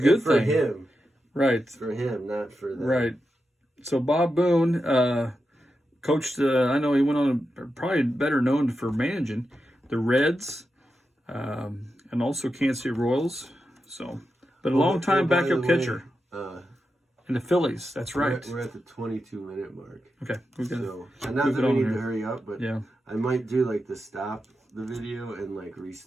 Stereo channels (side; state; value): both; normal; correlation 0.89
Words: thing for him, right? For him, not for them. Right. So Bob Boone coached. I know he went on probably better known for managing the Reds, and also Kansas City Royals. So, but a long time backup catcher. In the Phillies, that's right. We're at the 22-minute mark. Okay, we're gonna. And not that we need to hurry up, but yeah, I might do the stop the video and